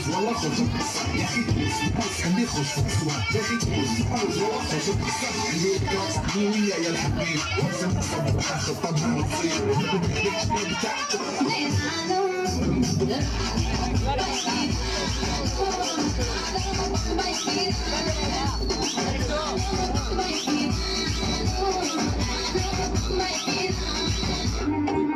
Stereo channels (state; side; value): identical; both; correlation 1.00